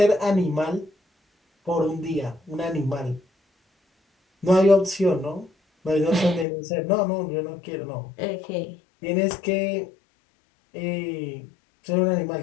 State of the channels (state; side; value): drops out; right; at 6.5 s